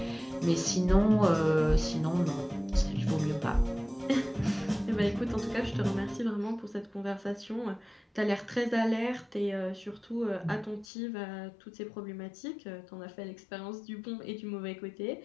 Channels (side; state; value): right; drops out; at 10.9 s